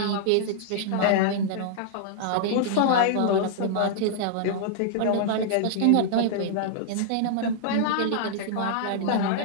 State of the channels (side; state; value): both; different; correlation -0.01